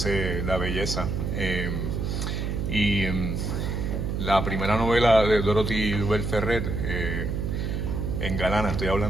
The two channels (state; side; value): noise; right; hum, 1 dB below the sound